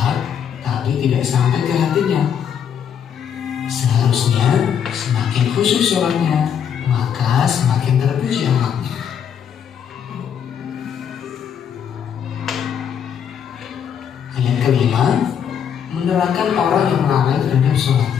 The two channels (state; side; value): quieter; right; 8.2 dB